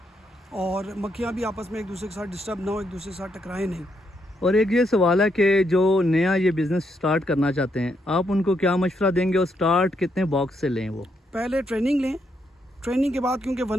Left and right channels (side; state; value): both; normal; correlation 0.77